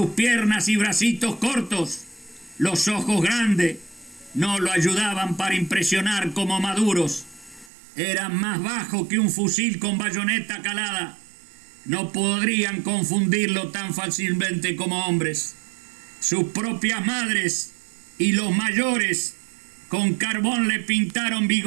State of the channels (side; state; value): left; drops out; at 7.7 s